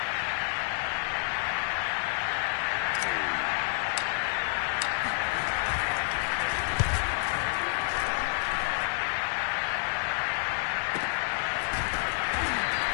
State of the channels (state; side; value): silent; right; digital silence